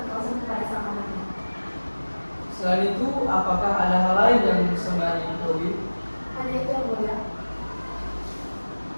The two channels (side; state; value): both; inverted; correlation -1.00